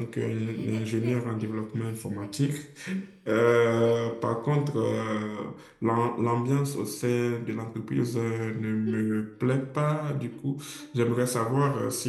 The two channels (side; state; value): both; identical; correlation 1.00